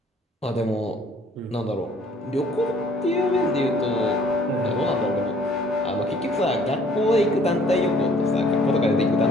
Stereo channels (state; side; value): normal; both; correlation 0.58